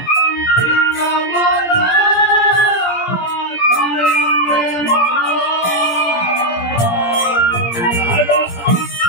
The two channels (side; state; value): right; late; 17 ms